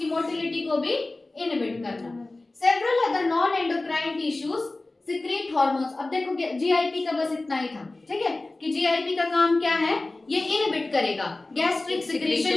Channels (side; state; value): right; quieter; 3.0 dB